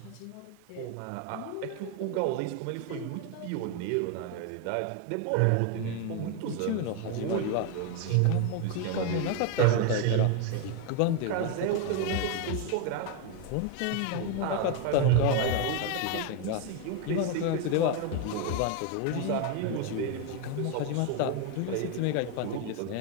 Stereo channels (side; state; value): both; different; correlation 0.01